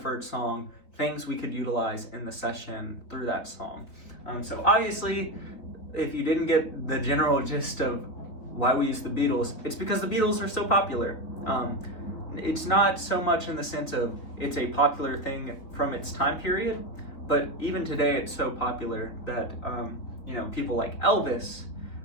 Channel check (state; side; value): late; right; 4.0 ms